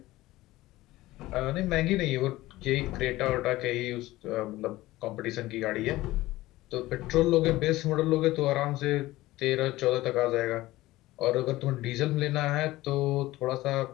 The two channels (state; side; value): quieter; right; 17.7 dB